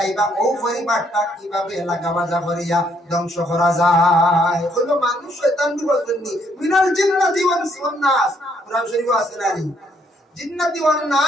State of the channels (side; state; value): both; normal; correlation 0.70